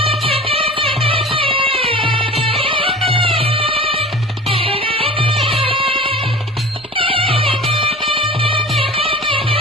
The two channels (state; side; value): normal; both; correlation 0.39